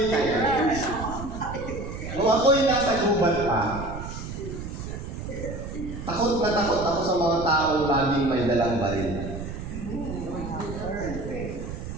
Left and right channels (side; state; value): right; noise; rumble, 8 dB below the sound